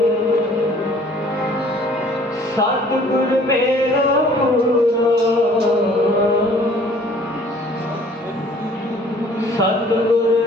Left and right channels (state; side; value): normal; both; correlation 0.55